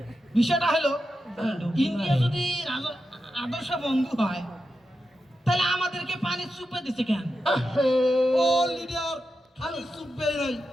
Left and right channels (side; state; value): both; normal; correlation 0.89